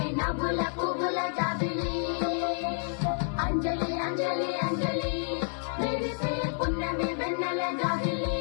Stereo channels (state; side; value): silent; right; digital silence